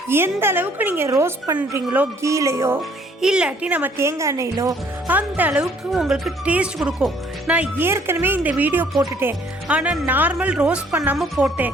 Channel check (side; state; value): both; normal; correlation 0.61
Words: எந்த அளவுக்கு நீங்கள் ரோஸ்ட் பண்ணுறீங்களோ கீலையோ இல்லாட்டி நம்ம தேங்காய் எண்ணெயிலோ அந்த அளவுக்கு உங்களுக்கு டேஸ்ட் கொடுக்கும். நான் ஏற்கனவே இந்த வீடியோ போட்டுட்டேன், ஆனால் நார்மல் ரோஸ்ட் பண்ணாமல்